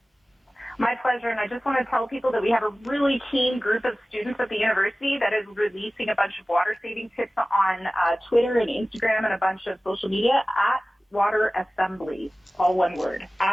My pleasure, and I just want to tell people that we have a really keen group of students at the university that is releasing a bunch of water-saving tips on Twitter and Instagram and a bunch of social media at Water Assembly, all one word,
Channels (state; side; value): normal; both; correlation 0.97